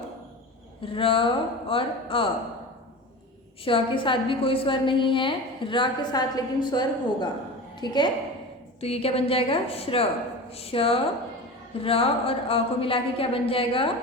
र और अ. श के साथ भी कोई स्वर नहीं है, र के साथ लेकिन स्वर होगा. ठीक है. तो ये क्या बन जाएगा? श्र. श, र और अ को मिला के क्या बन जाएगा?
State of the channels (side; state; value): both; normal; correlation 0.30